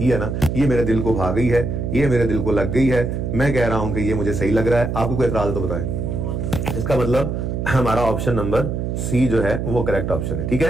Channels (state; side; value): noise; right; hum, 2 dB below the sound